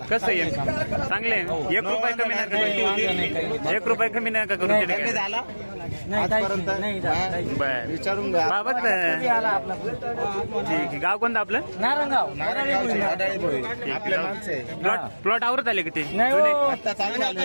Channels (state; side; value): inverted; both; correlation -1.00